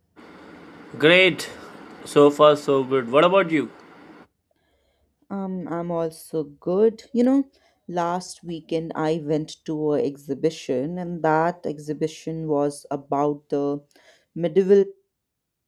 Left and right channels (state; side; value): identical; both; correlation 1.00